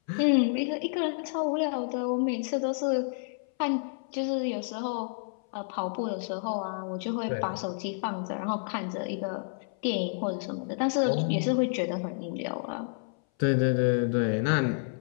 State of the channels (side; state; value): right; silent; 58 dB below the other